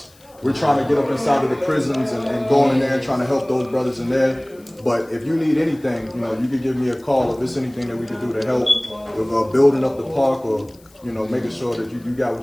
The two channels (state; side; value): noise; left; hiss, 28 dB below the sound